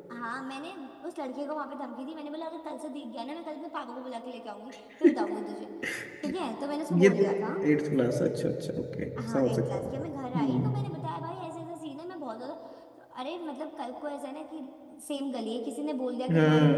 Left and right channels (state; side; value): identical; both; correlation 1.00